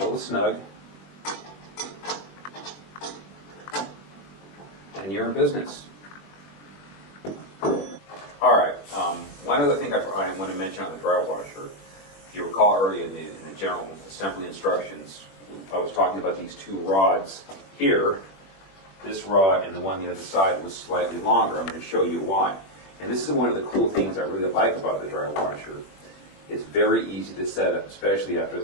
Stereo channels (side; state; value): right; late; 21 ms